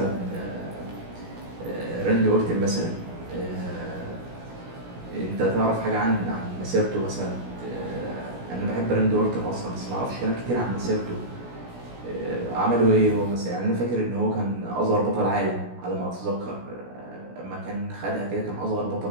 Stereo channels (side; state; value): left; late; 17 ms